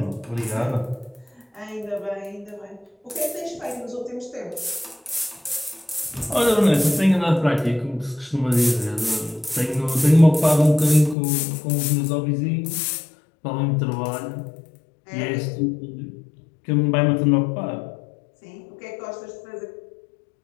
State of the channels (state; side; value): drops out; right; at 11.2 s